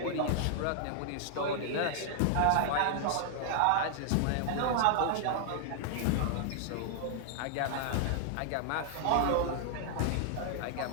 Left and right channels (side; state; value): both; different; correlation 0.00